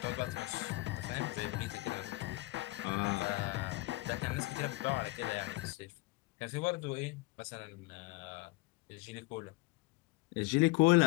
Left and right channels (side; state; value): right; quieter; 22.6 dB